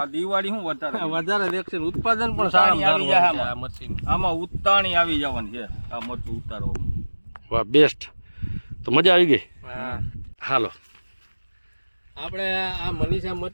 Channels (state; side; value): inverted; both; correlation -1.00